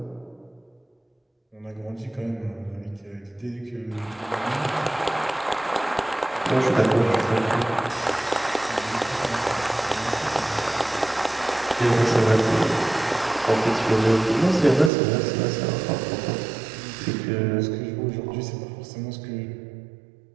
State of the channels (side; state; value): left; drops out; at 14.9 s